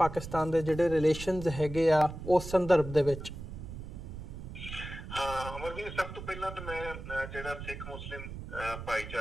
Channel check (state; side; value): noise; right; rumble, 10 dB below the sound